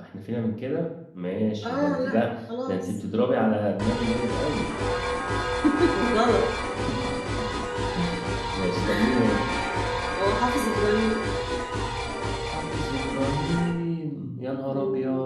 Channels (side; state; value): both; identical; correlation 1.00